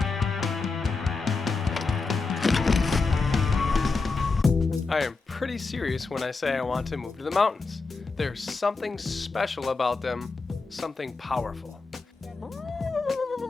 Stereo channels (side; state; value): right; quieter; 4.1 dB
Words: I am pretty serious when I say I want to move to the mountains. There's something special about them, something powerful.